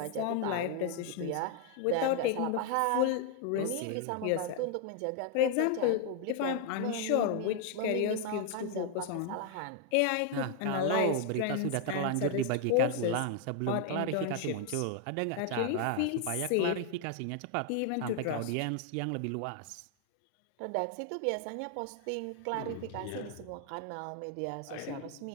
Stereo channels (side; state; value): both; different; correlation 0.00